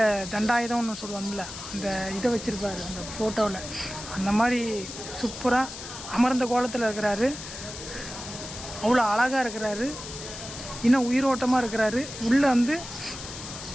தண்டாயுதம்னு சொல்லுவாங்கள்ல, அந்த இதை வச்சுருப்பார் அந்த ஃபோட்டோவில். அந்த மாதிரி சூப்பராக அமர்ந்த கோலத்தில் இருக்கிறாரு. அவ்வளோ அழகாக இருக்கிறாரு, இன்னும் உயிரோட்டமாக இருக்கிறாரு. உள்ளே வந்து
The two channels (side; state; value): left; noise; hiss, 11 dB below the sound